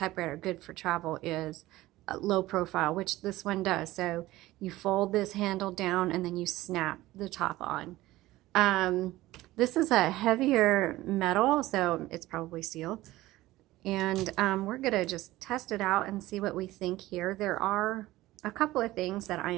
good for travel, is low profile, which this one does. So you fold this handle down and then you snap the top on. This is a heavier metal, so it's probably steel. And we're going to just test it out and see what we think here. There are a couple of things that I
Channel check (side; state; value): left; quieter; 17.2 dB